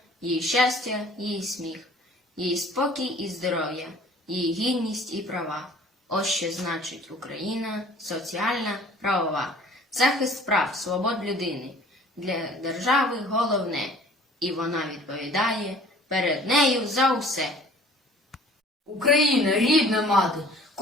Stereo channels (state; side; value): normal; both; correlation 0.51